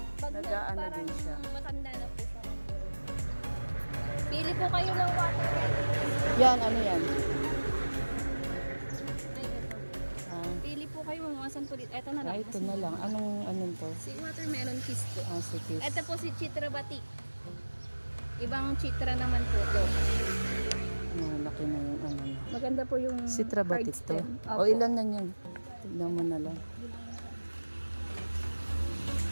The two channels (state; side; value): inverted; both; correlation -1.00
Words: Pag Nag-aano parang din siya. matanda na po siya. Pili po kayo ng water. Yan, ano yan? Ay, ito. Ah, Pili po kayo mga 10 po dito. Ito na lang. Ito na lang. Anong to? Si watermelon kiss po. Ah, sige. Ito po si Chitra Batik. Ibang Chitra naman po to. Laki na yung ano. Maganda po yung Si Trabatik to. card stem. O ilan na yan? Tignan mo na lang.